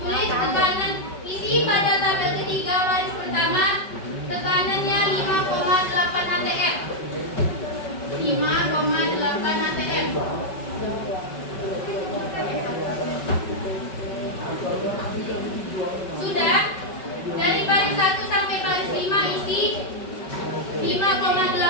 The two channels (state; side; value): late; right; 5.3 ms